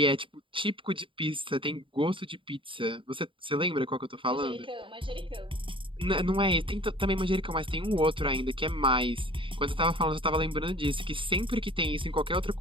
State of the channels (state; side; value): late; left; 0.25 ms